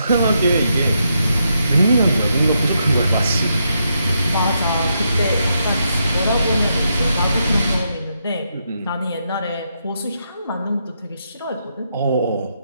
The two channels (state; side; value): inverted; both; correlation -0.81